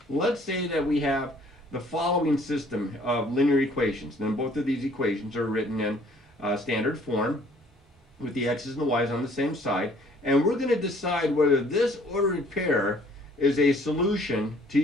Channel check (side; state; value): both; normal; correlation 0.58